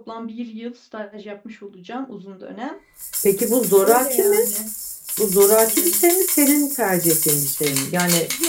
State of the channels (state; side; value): identical; both; correlation 1.00